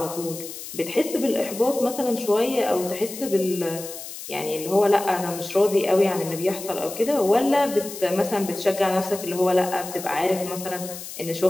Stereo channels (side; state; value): left; noise; hiss, 11 dB below the sound